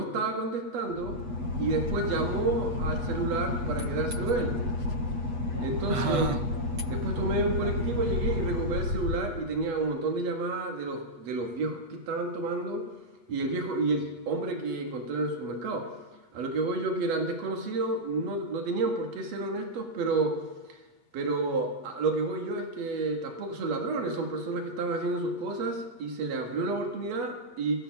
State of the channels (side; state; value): left; late; 8.3 ms